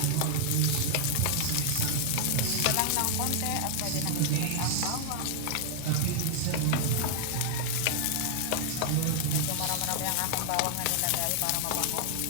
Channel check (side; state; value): both; different; correlation 0.00